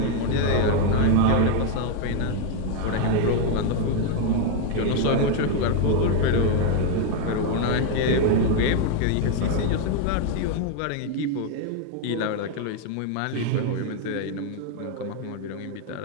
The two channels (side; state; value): both; different; correlation 0.01